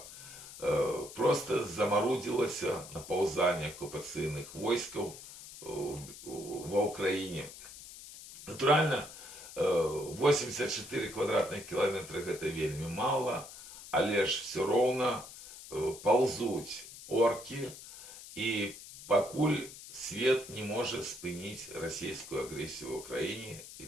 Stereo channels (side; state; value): left; noise; hiss, 15 dB below the sound